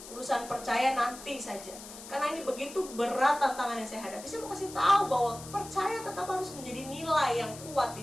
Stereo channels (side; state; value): left; noise; hiss, 14 dB below the sound